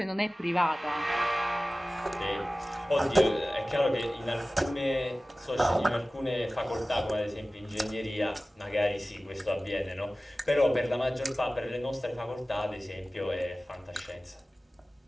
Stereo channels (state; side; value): normal; both; correlation 0.97